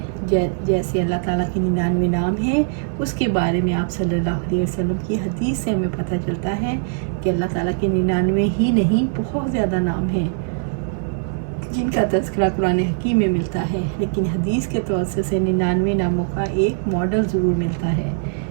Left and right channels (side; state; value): left; silent; digital silence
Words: جیسے اللہ تعالیٰ کے 99 نام ہیں، اس کے بارے میں آپ صلی اللہ علیہ وسلم کی حدیث سے ہمیں پتہ چلتا ہے کہ اللہ تعالیٰ کے 99 ہی نہیں، بہت زیادہ نام ہیں جن کا تذکرہ قرآن حکیم میں ملتا ہے، لیکن حدیث کے توسط سے 99 ناموں کا ایک ماڈل ضرور ملتا ہے،